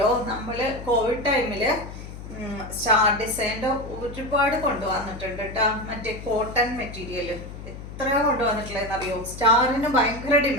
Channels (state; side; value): noise; left; hum, 12 dB below the sound